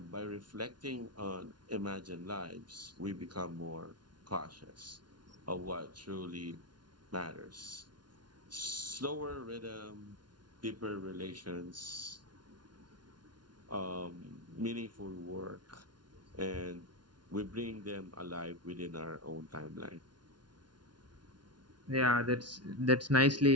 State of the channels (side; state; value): left; late; 0.70 ms